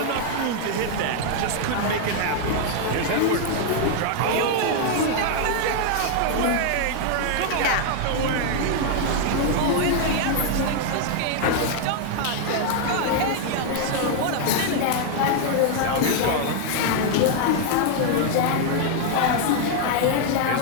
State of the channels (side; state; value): both; different; correlation 0.00